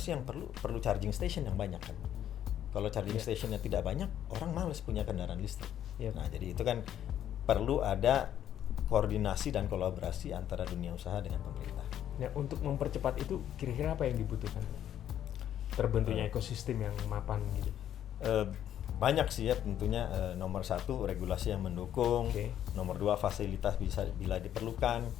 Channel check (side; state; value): right; quieter; 10.7 dB